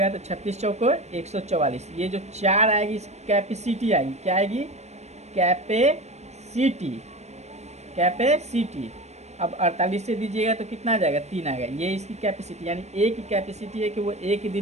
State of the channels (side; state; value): left; late; 0.32 ms